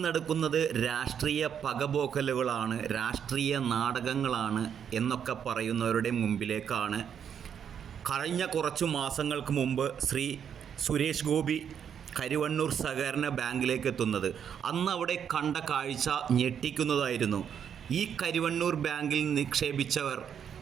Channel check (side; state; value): left; quieter; 8.2 dB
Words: നടക്കുന്നത് രാഷ്ട്രീയ പകപോക്കലുകളാണ്, രാഷ്ട്രീയ നാടകങ്ങളാണ് എന്നൊക്കെ പറയുന്നവരുടെ മുമ്പിലേക്കാണ് കഴിഞ്ഞ കുറച്ചു മാസങ്ങൾക്ക് മുമ്പ് ശ്രീ സുരേഷ് ഗോപി കരുവന്നൂർ സഹകരണ ബാങ്കിലേക്ക് എത്തുന്നത്. അന്ന് അവിടെ കണ്ട കാഴ്ച ഞെട്ടിക്കുന്നതായിരുന്നു. ഈ കരുവന്നൂർ ബാങ്കിൽ നിക്ഷേപിച്ചവർ